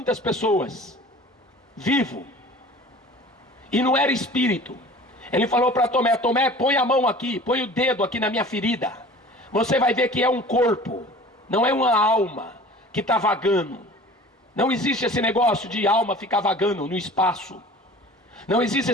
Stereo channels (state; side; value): normal; both; correlation 0.43